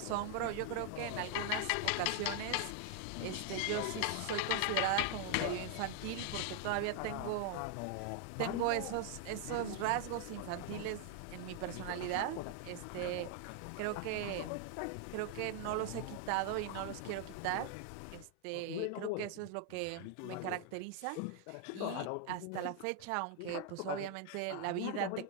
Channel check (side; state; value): both; different; correlation 0.00